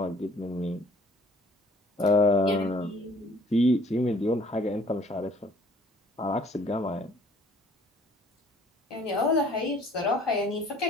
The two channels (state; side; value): normal; both; correlation 0.56